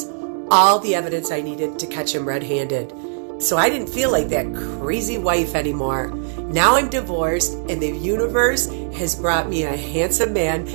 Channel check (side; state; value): left; silent; digital silence